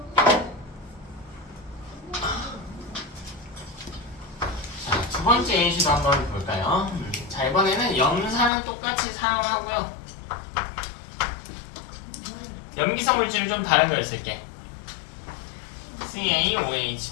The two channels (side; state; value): right; drops out; at 8.5 s